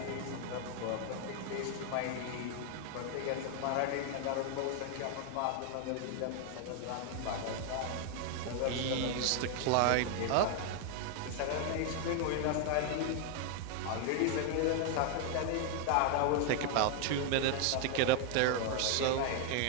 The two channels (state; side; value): different; both; correlation 0.00